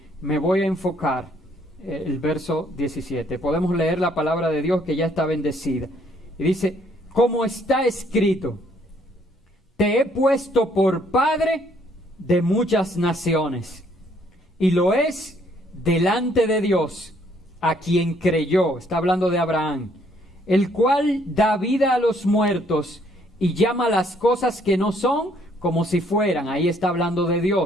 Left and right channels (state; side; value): normal; both; correlation 0.66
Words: me voy a enfocar, el verso 17. Podemos leer la palabra de Dios que ya está bendecida. Y dice, como está escrito, te he puesto por padre de muchas naciones, y lo es delante de Dios, a quien creyó, está hablando de Abraham, el cual da vida a los muertos y llama las cosas que no son como si fueran. Ahí está hablando de